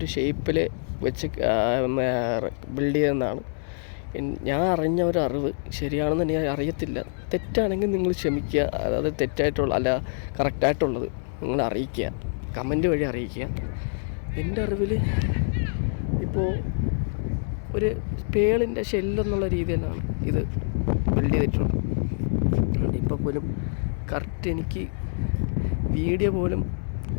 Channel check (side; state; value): right; silent; digital silence